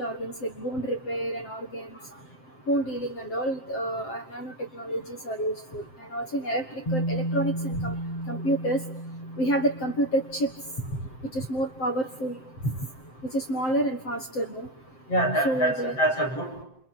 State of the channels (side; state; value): right; late; 7.7 ms